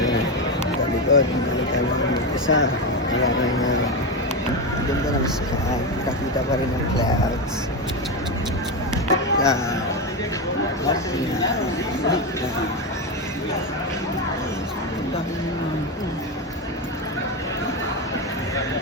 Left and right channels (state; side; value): normal; both; correlation 0.13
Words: Sa likod, nakita namin isa. Wala na ganda ng sky. Kakita pa rin ng clouds.